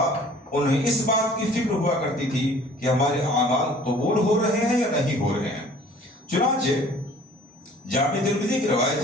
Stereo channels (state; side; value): normal; both; correlation 0.51